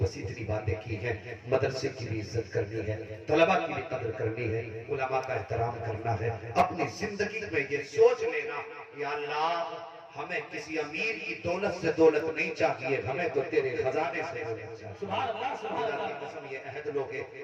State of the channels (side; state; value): both; identical; correlation 1.00